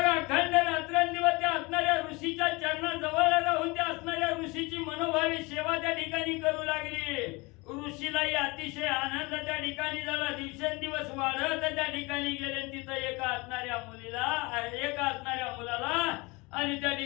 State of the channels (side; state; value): right; quieter; 25.3 dB